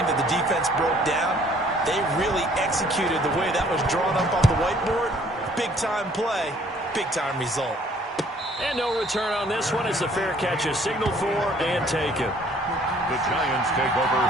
that the defense broke down. They really executed the way that was drawn up on the whiteboard. Big-time play, big-time result. And no return on this one as the fair catch is signaled for and taken. The Giants take over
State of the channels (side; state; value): both; normal; correlation 0.59